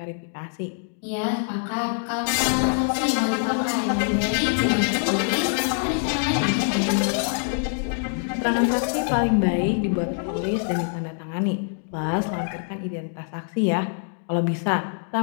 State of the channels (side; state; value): right; silent; 62 dB below the other